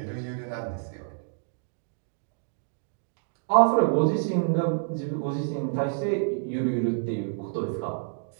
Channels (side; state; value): left; silent; digital silence